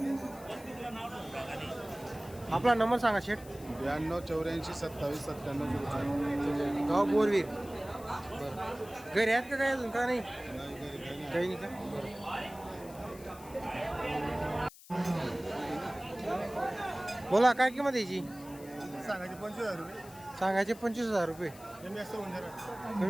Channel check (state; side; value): noise; left; hiss, 20 dB below the sound